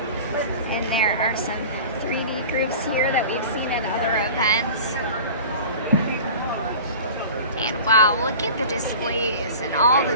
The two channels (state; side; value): inverted; both; correlation -0.38